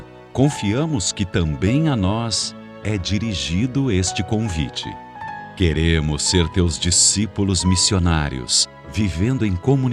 confiamos que também a nós é dirigido este convite. Queremos ser Teus discípulos missionários, vivendo em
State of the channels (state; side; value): identical; both; correlation 1.00